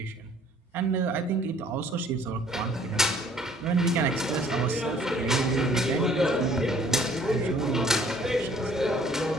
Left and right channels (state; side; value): normal; both; correlation 0.57